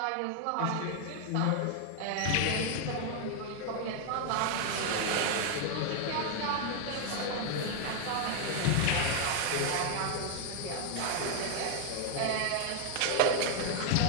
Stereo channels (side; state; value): both; different; correlation 0.01